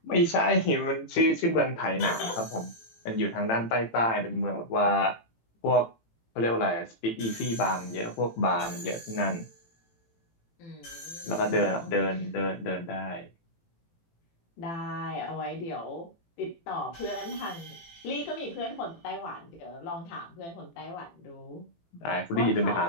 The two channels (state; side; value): late; right; 18 ms